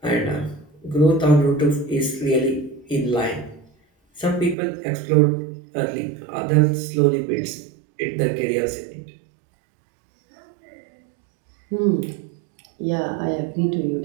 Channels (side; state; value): left; drops out; at 4.5 s